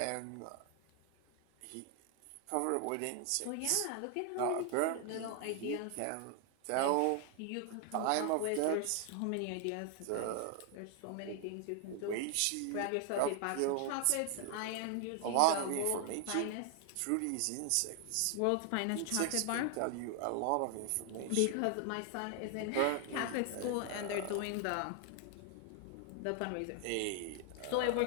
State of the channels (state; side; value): different; both; correlation 0.00